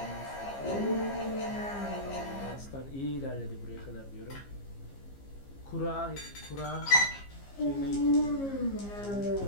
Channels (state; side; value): late; right; 15 ms